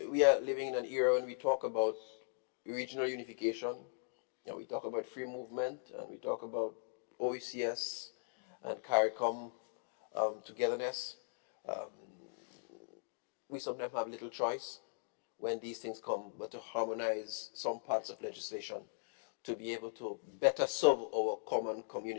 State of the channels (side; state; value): right; silent; digital silence